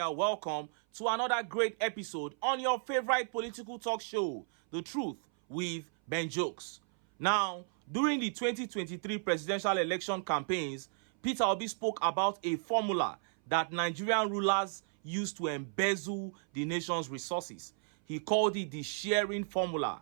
are welcome to another great episode on your favorite political talk show, The Truth with Ben Jokes. Now, during the 2023 presidential election campaigns, Peter Obi spoke about a formula that Nigerian rulers use to embezzle the nation's resources. He called it the sharing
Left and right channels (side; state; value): left; silent; 55 dB below the other